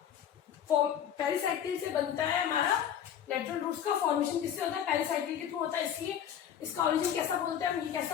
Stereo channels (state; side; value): quieter; right; 9.3 dB